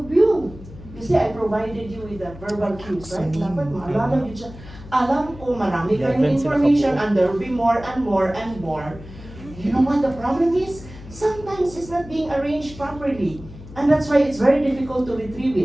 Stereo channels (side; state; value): left; noise; hum, 16 dB below the sound